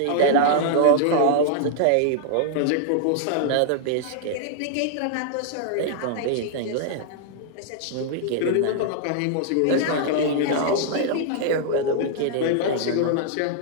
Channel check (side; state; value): both; different; correlation -0.01